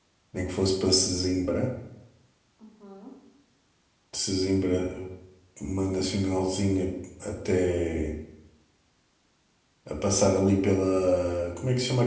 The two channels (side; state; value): both; identical; correlation 1.00